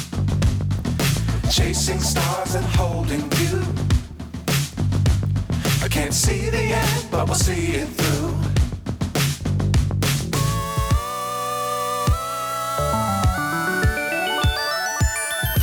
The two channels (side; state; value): both; identical; correlation 1.00